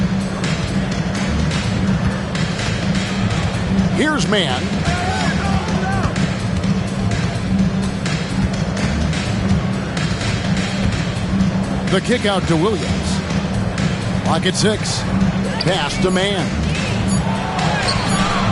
Here's man. The kick out to Williams. Clock at 6. Pass to Man.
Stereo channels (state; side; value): identical; both; correlation 1.00